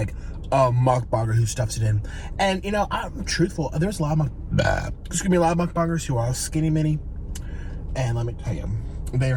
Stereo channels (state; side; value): identical; both; correlation 1.00